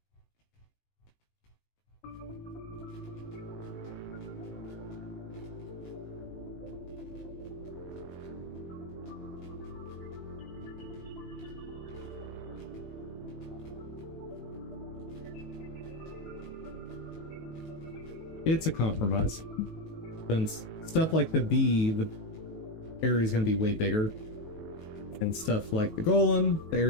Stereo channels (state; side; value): late; right; 19 ms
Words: It's a compromise. Since stuff like the bee, the area is going to be way bigger. And stuff like the golem, the